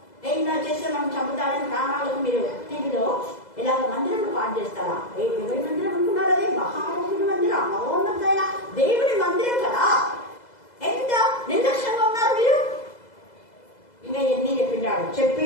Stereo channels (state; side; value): late; right; 2.0 ms